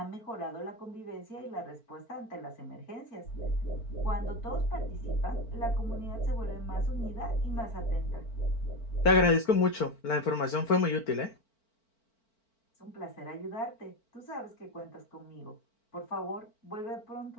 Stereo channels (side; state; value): right; late; 4.4 ms